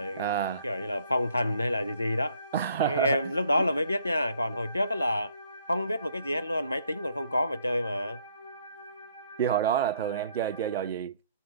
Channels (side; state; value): both; inverted; correlation -0.65